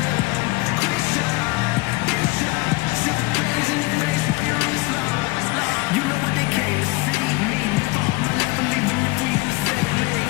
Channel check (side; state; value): right; quieter; 22.7 dB